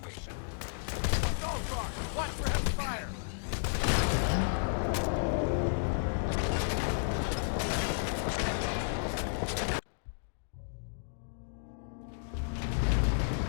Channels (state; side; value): silent; right; digital silence